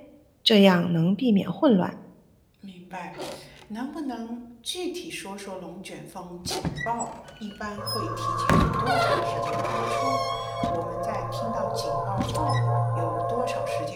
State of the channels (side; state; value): both; identical; correlation 1.00